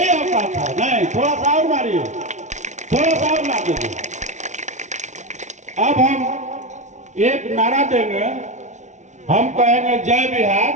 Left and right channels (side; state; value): left; late; 0.34 ms